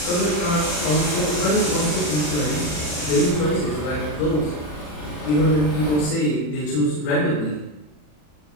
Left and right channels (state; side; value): late; right; 40 ms